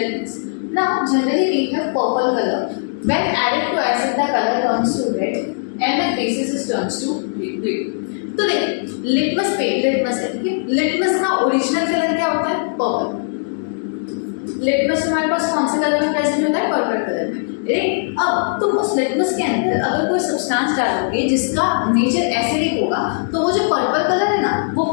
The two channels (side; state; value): right; silent; digital silence